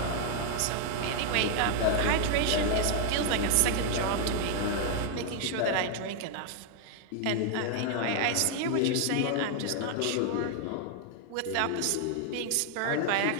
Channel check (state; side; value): different; both; correlation 0.00